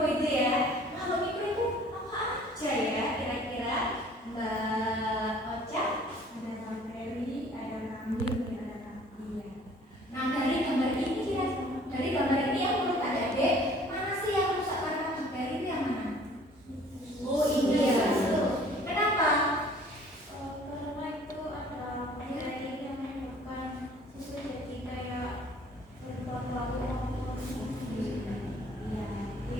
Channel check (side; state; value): both; normal; correlation 0.53